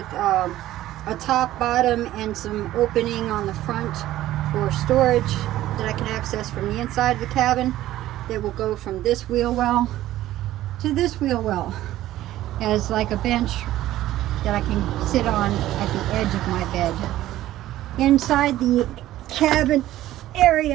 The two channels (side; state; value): left; quieter; 14.4 dB